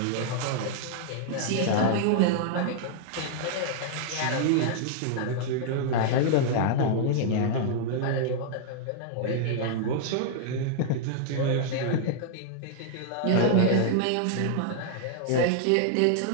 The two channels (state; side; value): different; both; correlation -0.01